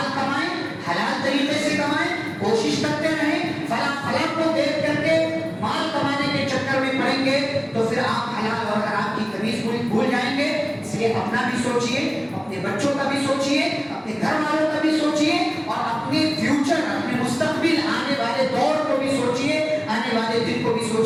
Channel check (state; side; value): identical; both; correlation 1.00